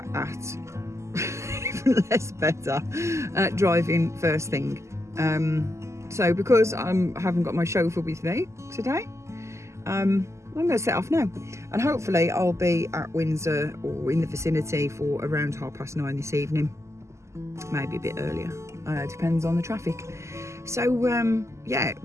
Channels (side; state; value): left; late; 0.13 ms